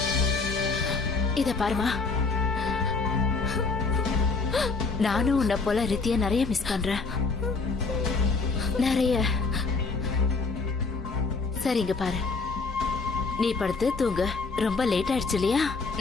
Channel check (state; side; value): quieter; right; 4.2 dB